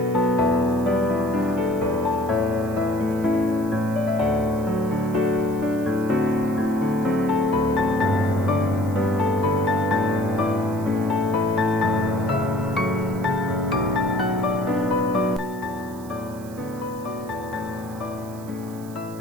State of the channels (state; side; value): noise; right; hiss, 22 dB below the sound